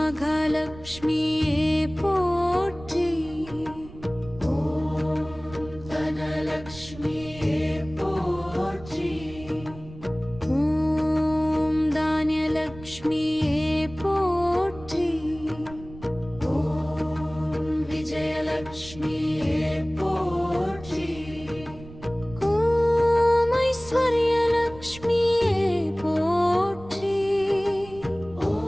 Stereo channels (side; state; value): right; noise; rumble, 17 dB below the sound